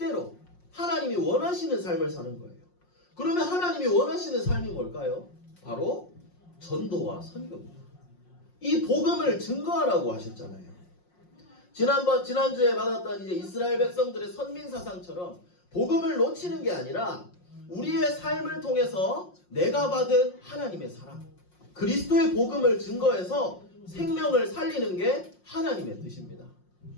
하나님이 원하시는 삶을 사는 거예요. 그러면 하나님이 원하시는 삶이 뭘까요? 바로 전도와 선교입니다. 이 복음을 증거하라고 하셨잖아요. 지난주에 받았던 이제 이스라엘 백성들의 선민사상처럼 복음을 놓치는 게 아니라 우리의 삶을 통해서 내가 받은 하나님의 사랑, 그리스도의 복음을 증거해서 생명을 살리는 게 하나님의 뜻입니다.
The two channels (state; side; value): late; right; 5.6 ms